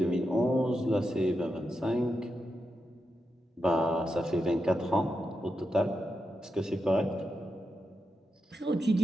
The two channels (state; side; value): normal; both; correlation 0.87